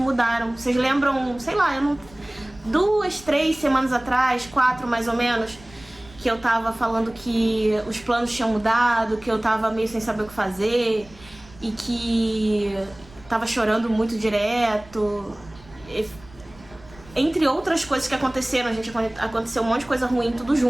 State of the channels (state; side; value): noise; right; rumble, 23 dB below the sound